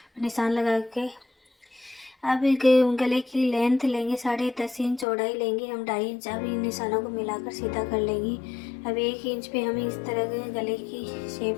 निशान लगा के अब गले की लेंथ लेंगे 10.5 इंच, चौड़ाई लेंगे हम 2.5 इंच। अब इन निशानों को मिलाकर सीधा कर लेंगे। अब 1 इंच पे हम इस तरह के गले की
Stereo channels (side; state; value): right; drops out; at 5.1 s